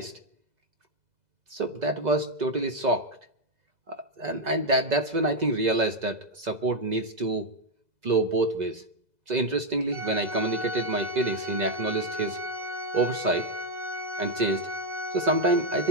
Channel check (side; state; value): left; late; 2.0 ms